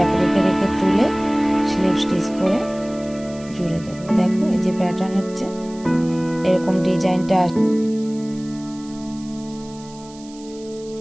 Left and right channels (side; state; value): right; noise; hiss, 22 dB below the sound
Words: রেখে রেখে তুলে স্লিপ স্টিচ করে জুড়ে দেব। দেখো এই যে প্যাটার্ন হচ্ছে, এরকম ডিজাইনটা